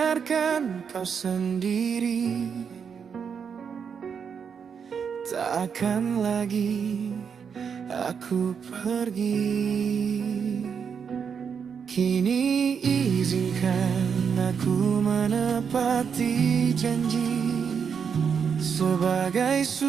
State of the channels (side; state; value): left; quieter; 6.7 dB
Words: kau sendiri, tak akan lagi aku pergi. Kini izinkan aku menepati janji sebagai